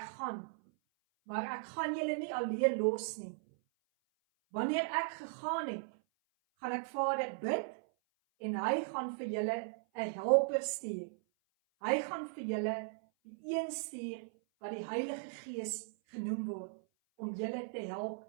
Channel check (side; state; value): left; silent; 53 dB below the other